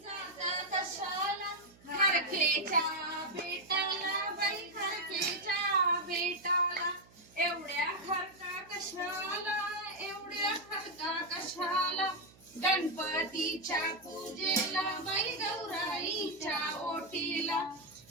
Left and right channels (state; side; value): noise; right; hum, 26 dB below the sound